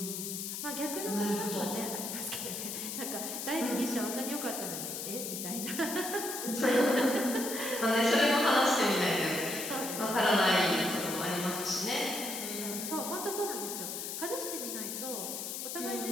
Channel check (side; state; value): left; noise; hiss, 5 dB below the sound